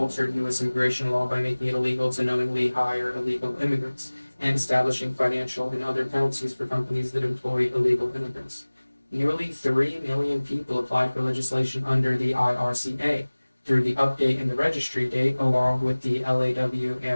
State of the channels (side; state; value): both; inverted; correlation -1.00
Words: U.S. immigration law by making it illegal to knowingly hire illegal immigrants and establishing financial and other penalties for companies that employ illegal immigrants. Nearly 3 million people applied for legislation under the IRCA through the update in the registry date, along with the LAW